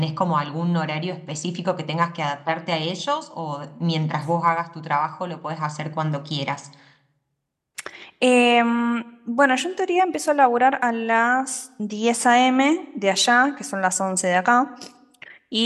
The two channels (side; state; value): both; identical; correlation 1.00